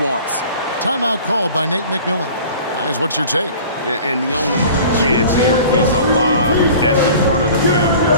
Timeout called by Nate McMillan. Guys, what's your take? And the only chance here is a lob at the front of the rim,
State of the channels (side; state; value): both; inverted; correlation -0.44